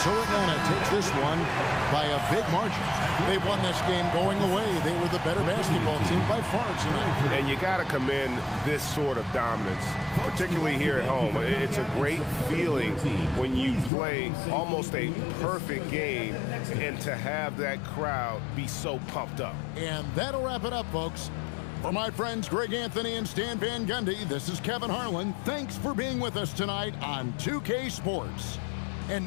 Atlanta takes this one by a big margin. They won this game going away. They were the better basketball team by far tonight. And you got to commend this sort of dominance, particularly here at home. It's a great feeling when you play almost a perfect game and to have that crowd be so pumped up. And that'll wrap it up, folks. For my friends Greg Anthony and Stan Van Gundy, this is Kevin Harlan. Thanks for being with us tonight on 2K Sports. And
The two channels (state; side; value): drops out; right; at 13.9 s